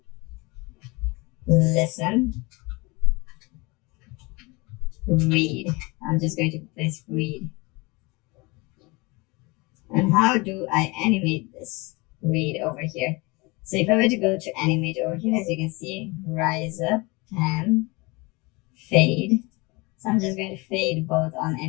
Listen. Read. I'm just going to place read. And how do I animate this read over here? So if I were to go to animate over here, as you can see, rise up, pan, fade. So I'm just going to fade both on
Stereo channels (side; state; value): right; quieter; 25.8 dB